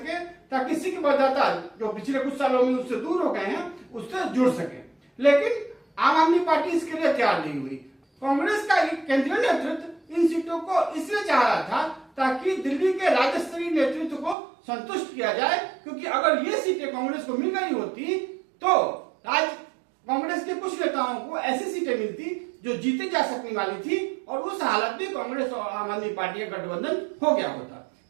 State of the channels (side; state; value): left; drops out; at 14.4 s